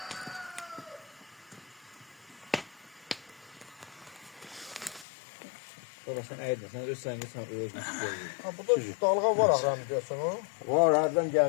Baba sen eğdin, sen öz səngi sən özünü tutuyorsun. Ha burada dalga var ahram diyorsun o. Var, hardan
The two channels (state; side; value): drops out; right; at 5.1 s